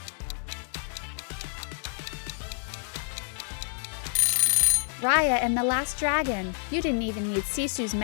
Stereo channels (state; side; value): silent; right; digital silence